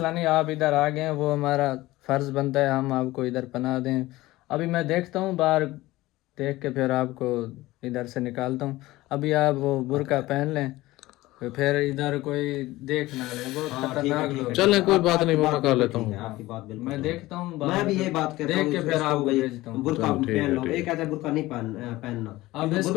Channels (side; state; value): right; quieter; 18.2 dB